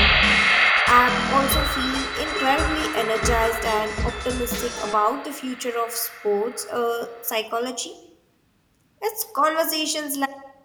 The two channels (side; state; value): both; identical; correlation 1.00